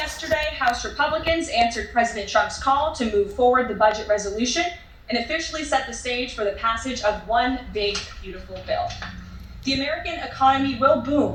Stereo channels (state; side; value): identical; both; correlation 1.00